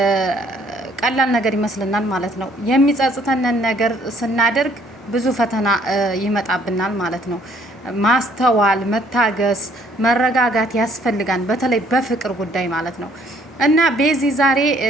ቀላል ነገር ይመስልናል ማለት ነው። የሚጸጽተንን ነገር ስናደርግ ብዙ ፈተና ይመጣብናል ማለት ነው። ማስተዋል፣ መታገስ፣ መረጋጋት ያስፈልጋል። በተለይ በፍቅር ጉዳይ ማለት ነው። እና ቤዚ ዛሬ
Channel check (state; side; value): normal; both; correlation 0.62